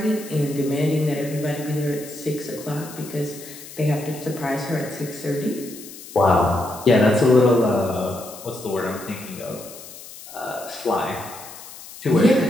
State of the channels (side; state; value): left; noise; hiss, 15 dB below the sound